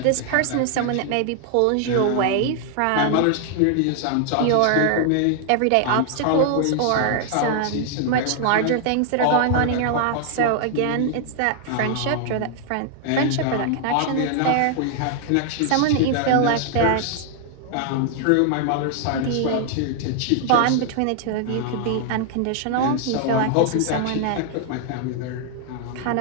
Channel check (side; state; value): both; different; correlation 0.00